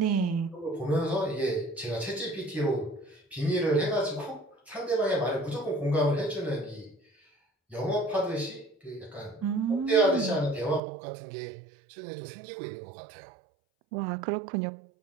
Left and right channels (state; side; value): drops out; left; at 10.8 s